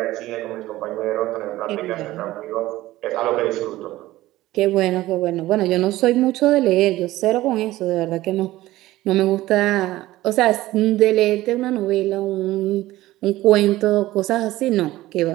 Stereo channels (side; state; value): left; quieter; 16.6 dB